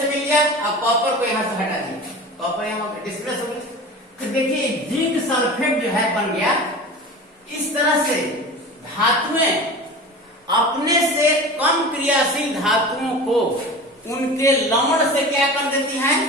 मिल गया, अब कॉपर को यहां से हटा दिया, कॉपर यहां डिस्प्लेस हो गया, तो देखिए जिंक सल्फेट जो है बन गया। इस तरह से धातुएं अपने से कम क्रियाशील धातुओं को उनके लवण से क्या कर देती हैं,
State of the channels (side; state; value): both; normal; correlation 0.34